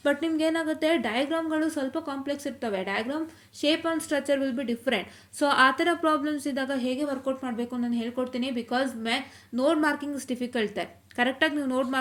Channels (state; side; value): identical; both; correlation 1.00